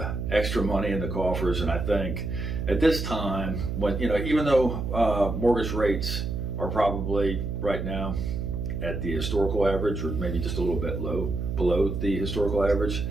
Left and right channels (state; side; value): noise; right; hum, 3 dB below the sound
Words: extra money in the coffers, and I think at this time, when even though mortgage rates are probably right now at the historical average, or maybe just a little bit below the historical average,